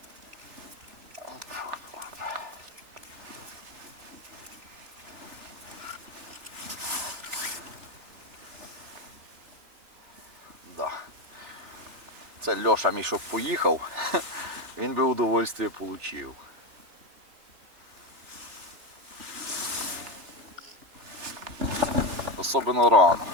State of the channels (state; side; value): late; left; 3.4 ms